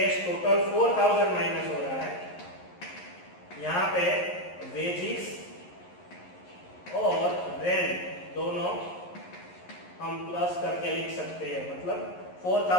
टोटल 4,000 माइनस हो रहा है. यहाँ पे वेजिस और रेंट दोनों हम प्लस करके लिख सकते हैं. मतलब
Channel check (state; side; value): late; right; 11 ms